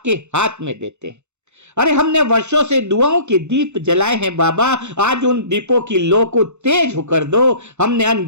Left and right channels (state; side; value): late; left; 0.83 ms